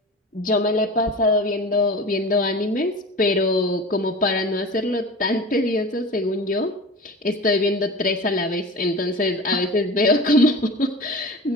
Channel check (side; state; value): both; normal; correlation 0.34